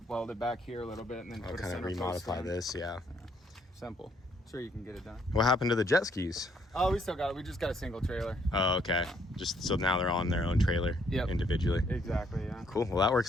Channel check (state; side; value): normal; both; correlation 0.68